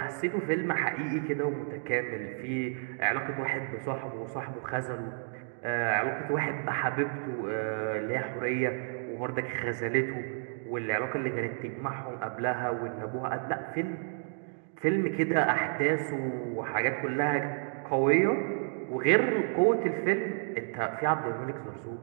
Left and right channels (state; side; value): silent; left; 57 dB below the other